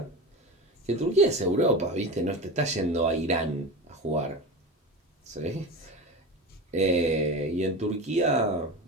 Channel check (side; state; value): both; normal; correlation 0.26